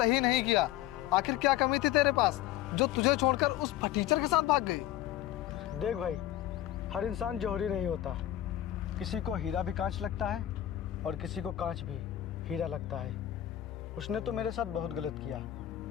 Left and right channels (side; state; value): right; quieter; 13.1 dB